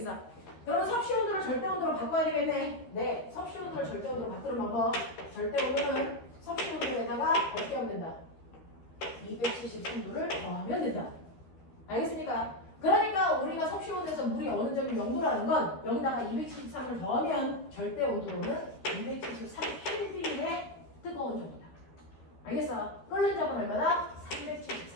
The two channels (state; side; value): late; right; 13 ms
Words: 그러면 섭씨 온도를 절대 온도로 바꿔야 되겠네. 네, 섭씨 온도를 절대 온도로 바꾸는 방법. 절대 온도는 섭씨 온도에다가 어떻게 하면 된다? 273도를 더하면 된다. 알겠습니까? 그러니까 우리가 섭씨 온도에서 물이 어느 점이 0도라는 건 여기다가 273을 더하면 절대 온도로는 273켈빈의 뜨거운 정도다. 알겠어? 끓는 점은 얼마나?